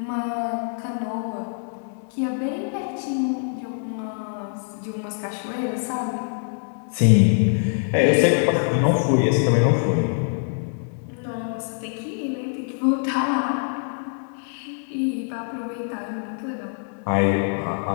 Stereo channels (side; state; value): right; silent; 61 dB below the other